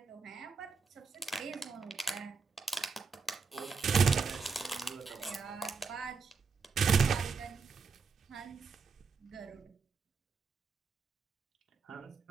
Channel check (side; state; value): left; quieter; 5.0 dB